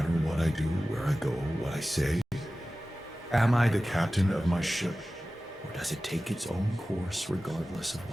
what I do, where I go, what I say? Am I the captain of my ship? Or does it take its own course regardless of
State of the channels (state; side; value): normal; both; correlation 0.96